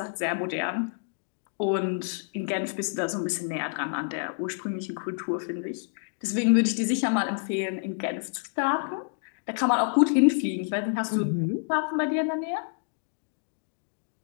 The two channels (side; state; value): right; silent; 58 dB below the other